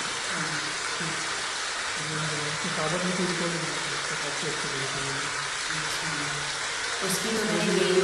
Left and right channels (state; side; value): identical; both; correlation 1.00